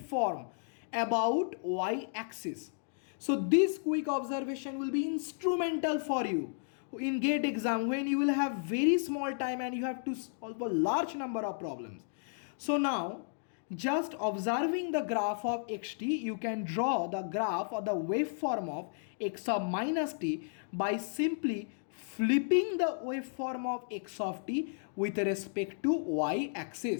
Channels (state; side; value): silent; right; digital silence